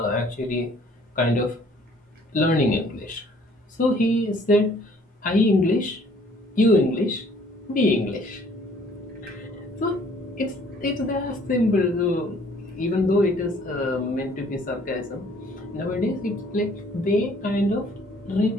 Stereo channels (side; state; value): both; normal; correlation 0.58